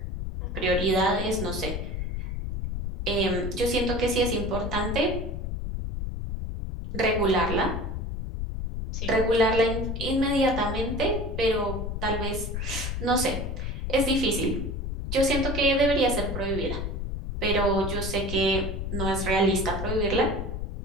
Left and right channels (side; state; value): left; noise; rumble, 4 dB below the sound